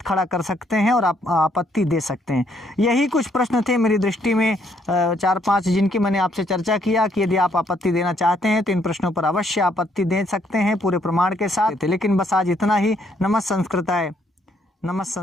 खड़ा कर सकते हैं और आप आपत्ति दे सकते हैं। यही कुछ प्रश्न थे मेरी दृष्टि में 4-5 जिनकी मैंने आपसे चर्चा किया कि यदि आप आपत्ति देना चाहते हैं तो इन प्रश्नों पर अवश्य आपत्ति दे सकते हैं पूरे प्रमाण के साथ। लेकिन बस आज इतना ही। नमः संस्कृताय, नमः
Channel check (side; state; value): both; normal; correlation 0.70